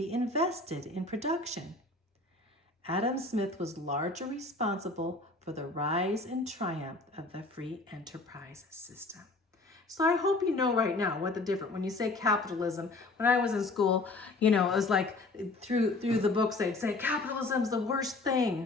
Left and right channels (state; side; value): quieter; right; 3.2 dB